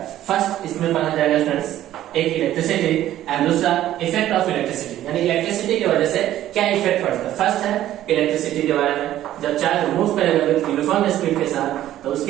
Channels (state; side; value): quieter; left; 13.0 dB